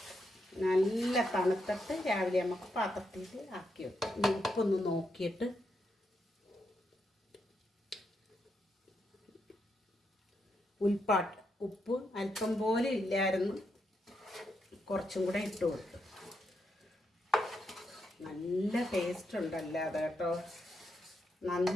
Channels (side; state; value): both; normal; correlation 0.82